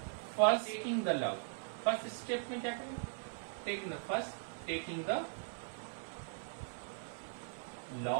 first taking the log, first step में क्या करेंगे, taking the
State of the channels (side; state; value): left; silent; 51 dB below the other